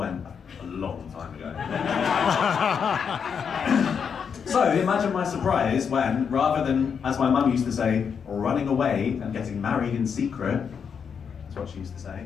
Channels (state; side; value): quieter; right; 6.8 dB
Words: a long time ago. So imagine my surprise when, rather than, as my mum used to say, running away and getting married in secret, that's what she used to